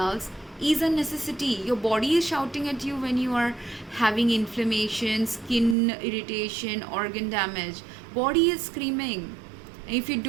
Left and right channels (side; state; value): left; drops out; at 5.8 s